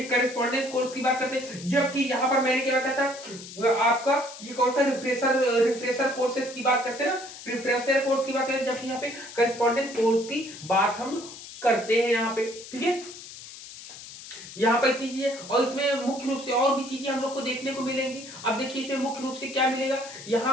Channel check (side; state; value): left; noise; hiss, 14 dB below the sound